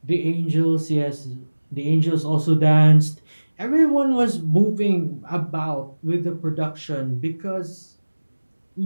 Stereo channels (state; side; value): inverted; both; correlation -1.00